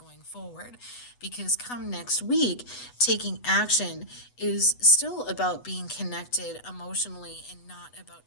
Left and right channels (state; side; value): late; right; 8.1 ms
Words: forward. Because come next week, taking action is still about being connected emotionally and not about